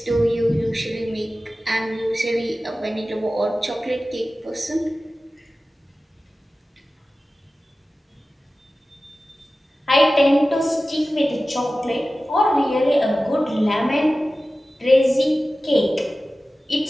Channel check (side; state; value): both; normal; correlation 0.95